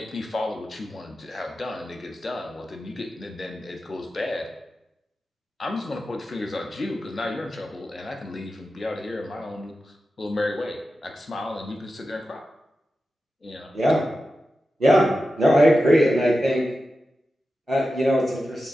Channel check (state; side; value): normal; both; correlation 0.92